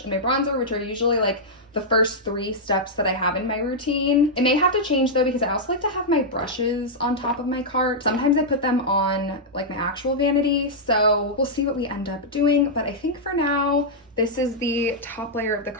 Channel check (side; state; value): both; normal; correlation -0.07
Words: and my bronzer, which are usually like the first 3 steps that I have in my routine. It may have to change though because I also like to have my brushes on top of my cart. Sometimes I put them on like my actual vanity, so we'll see what we end up doing. But I think for now, this is the top layer of the